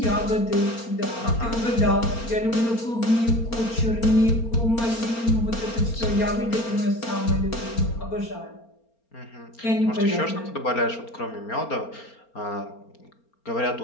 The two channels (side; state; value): right; late; 4.3 ms